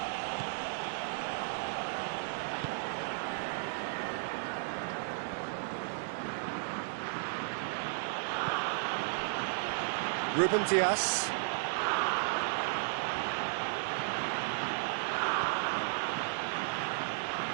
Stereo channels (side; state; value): left; silent; digital silence